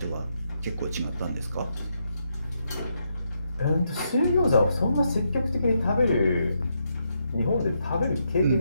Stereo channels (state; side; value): inverted; both; correlation -0.80